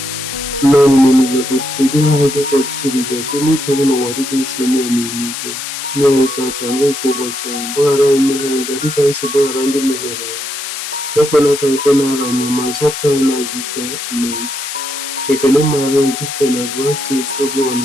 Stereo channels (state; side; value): noise; left; hiss, 6 dB below the sound